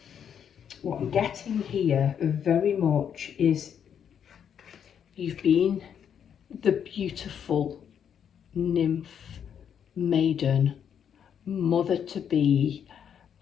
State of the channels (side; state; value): right; quieter; 8.3 dB